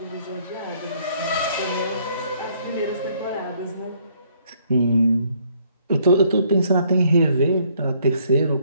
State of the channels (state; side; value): inverted; both; correlation -0.66